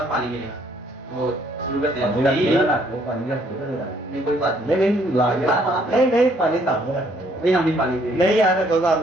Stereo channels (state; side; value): normal; both; correlation 0.65